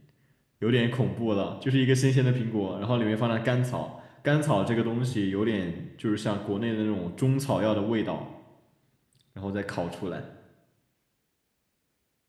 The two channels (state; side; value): identical; both; correlation 1.00